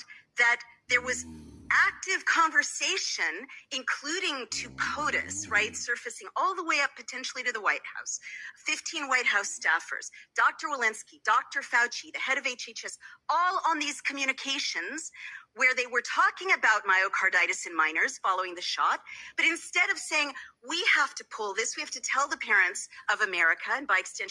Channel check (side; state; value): both; identical; correlation 1.00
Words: that there was active conversation, including to POTUS, right, surfacing all the way up potentially to the White House, 15 White House staffers, Dr. Walensky, Dr. Fauci, the head of HHS, all on these communications where they were talking about myocarditis in minors following the shot. But instead of saying, we have to pull this, we have to tell the parents of America, and by